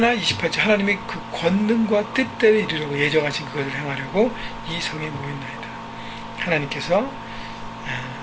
28절 하나님의 그 권능과 뜻대로 이루려고 예정하신 그것을 행하려고 이 성에 모였나이다. 하나님께서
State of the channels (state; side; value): identical; both; correlation 1.00